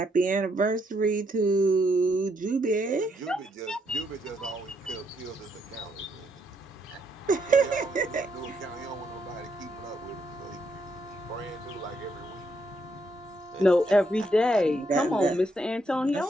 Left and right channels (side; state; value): both; normal; correlation 0.75